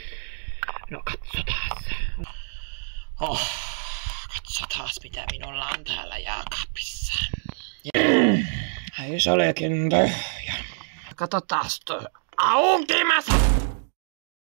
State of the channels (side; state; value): left; silent; digital silence